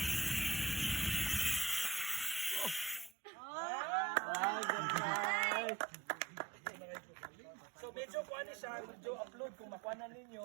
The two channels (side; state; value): left; drops out; at 3.2 s